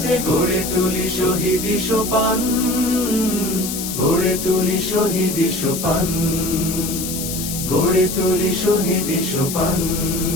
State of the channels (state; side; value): noise; left; hiss, 5 dB below the sound